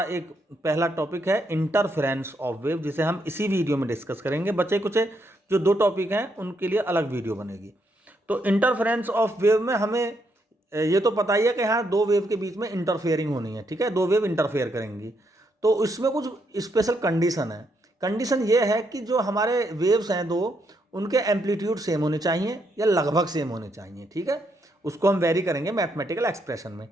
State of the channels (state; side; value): normal; both; correlation 0.77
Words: एक पहला टॉपिक है इंटरफेरेंस ऑफ वेव, जिसे हम इसी वीडियो में डिस्कस करेंगे। बचे कुछ जो दो टॉपिक हैं उनके लिए अलग वीडियो बनेगी। तो इंटरफेरेंस ऑफ वेव में हमें ये तो पता ही है कि हाँ दो वेव के बीच में इंटरफेयरिंग होनी है, ठीक है, दो वेव इंटरफेयर करेंगी। तो इसमें कुछ स्पेशल कंडीशन है। कंडीशन ये है कि जो हमारे वेव्स हैं दो, उनके एम्पलीट्यूड सेम होने चाहिए या लगभग सेम होने चाहिए, ठीक है, उसको हम वेरी करेंगे मैथमेटिकल एक्सप्रेशन में।